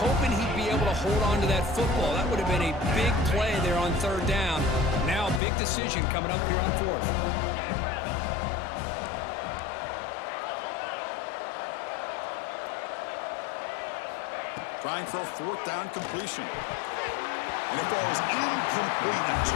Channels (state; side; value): drops out; right; at 5.4 s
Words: he'd be able to hold on to that football. That would have been a big play there on 3rd down. Now big decision coming up here on fourth. Trying for a fourth down completion. And it falls incomplete. A